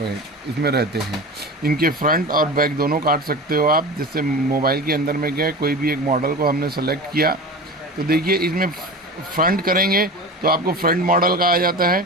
इसमें रहते हैं। इनके फ्रंट और बैक दोनों काट सकते हो आप। जैसे मोबाइल के अंदर में गए, कोई भी एक मॉडल को हमने सेलेक्ट किया तो देखिए इसमें फ्रंट करेंगे तो आपको फ्रंट मॉडल का आ जाता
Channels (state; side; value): normal; both; correlation 0.31